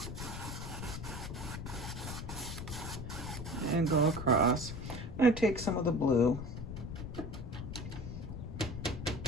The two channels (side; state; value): left; noise; rumble, 7 dB below the sound